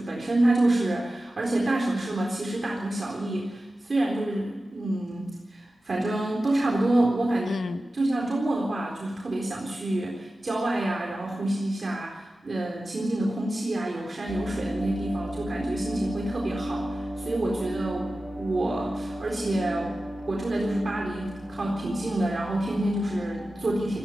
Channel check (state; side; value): normal; both; correlation 0.94